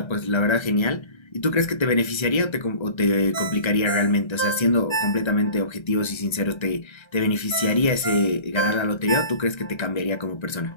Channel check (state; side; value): late; right; 1.3 ms